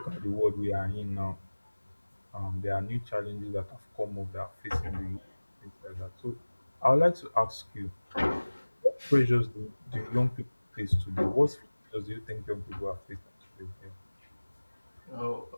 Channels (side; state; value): both; inverted; correlation -1.00